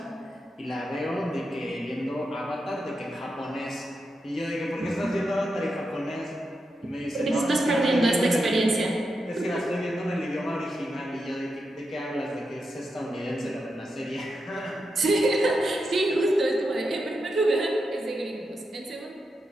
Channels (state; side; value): normal; both; correlation 0.87